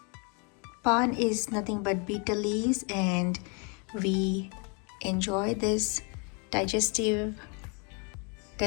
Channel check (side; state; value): right; quieter; 34.8 dB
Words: Paan is nothing but betel leaves and we enjoy this digestive